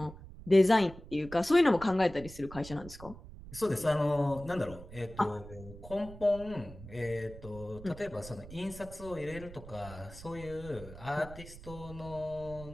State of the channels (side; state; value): right; noise; rumble, 15 dB below the sound